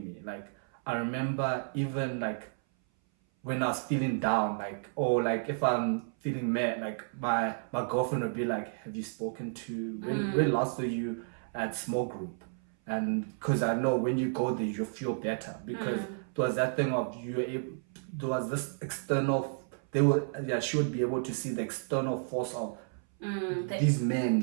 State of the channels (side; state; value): left; silent; 57 dB below the other